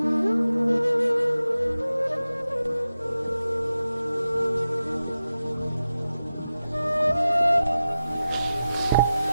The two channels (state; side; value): inverted; both; correlation -0.92